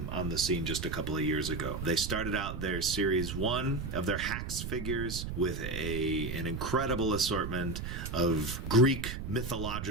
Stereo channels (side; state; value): right; noise; rumble, 5 dB below the sound